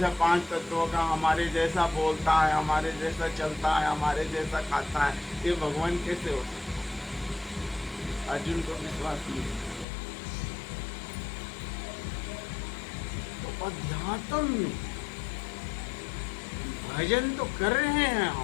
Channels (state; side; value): drops out; right; at 9.9 s